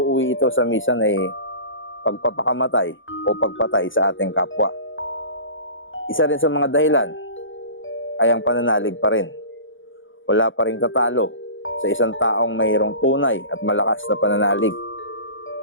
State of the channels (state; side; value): late; right; 0.57 ms